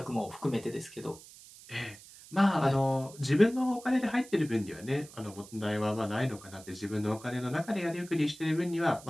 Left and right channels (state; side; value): noise; right; hiss, 19 dB below the sound